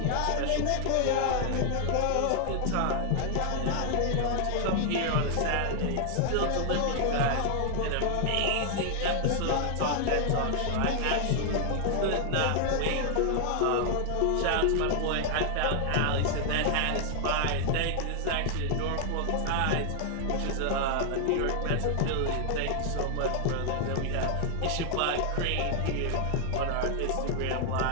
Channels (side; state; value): both; different; correlation 0.00